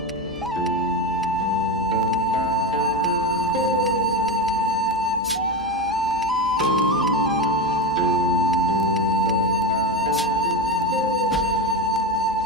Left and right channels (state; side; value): normal; both; correlation 0.18